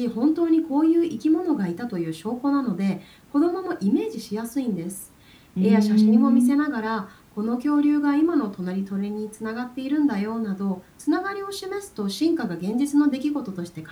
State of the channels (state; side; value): identical; both; correlation 1.00